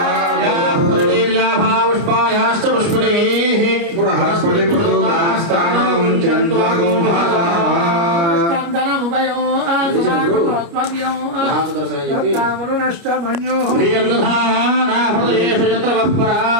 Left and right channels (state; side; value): late; left; 29 ms